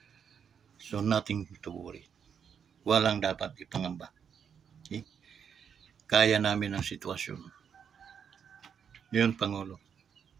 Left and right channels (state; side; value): quieter; left; 7.4 dB